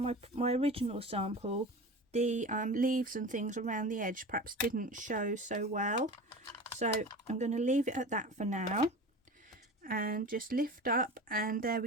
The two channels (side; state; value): both; normal; correlation 0.33